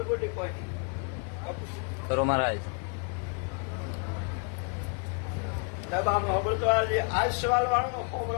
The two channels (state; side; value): quieter; right; 39.1 dB